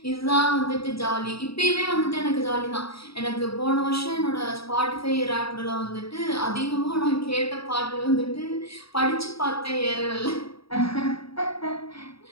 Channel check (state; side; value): late; right; 0.76 ms